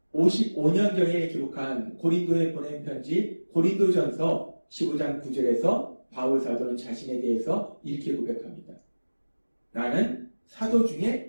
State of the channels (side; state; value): both; inverted; correlation -1.00